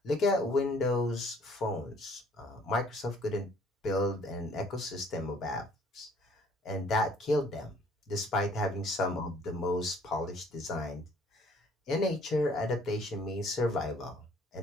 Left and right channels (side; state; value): both; normal; correlation 0.58